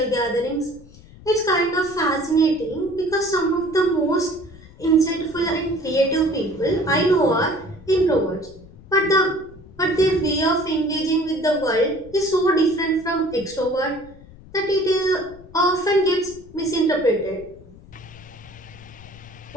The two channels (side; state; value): left; noise; rumble, 21 dB below the sound